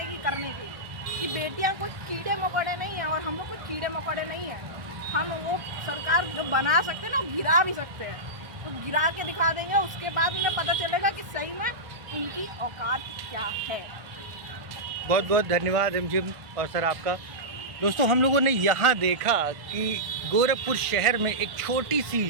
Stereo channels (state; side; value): late; left; 1.5 ms